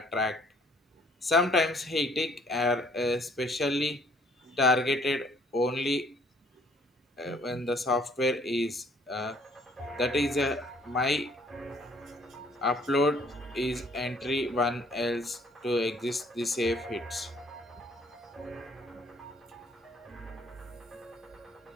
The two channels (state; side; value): normal; both; correlation 0.61